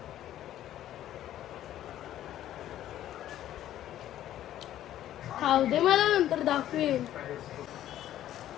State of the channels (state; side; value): quieter; right; 12.4 dB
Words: खाऊ दे मला, नंतर दाखवेन.